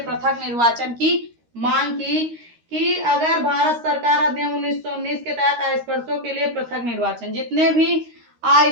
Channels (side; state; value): left; late; 13 ms